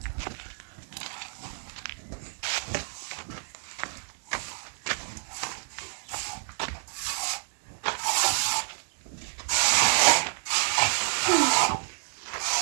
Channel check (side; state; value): left; silent; digital silence